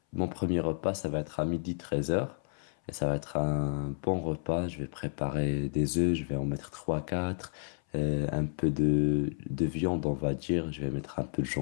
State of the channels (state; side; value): silent; right; 57 dB below the other